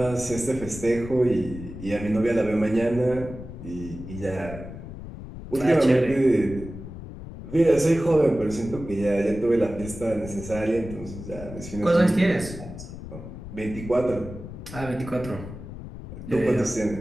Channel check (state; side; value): noise; left; rumble, 12 dB below the sound